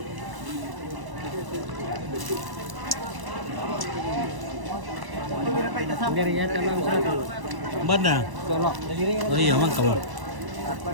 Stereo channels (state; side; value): late; left; 1.0 ms